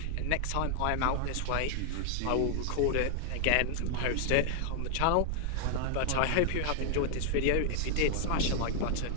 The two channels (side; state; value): both; different; correlation 0.00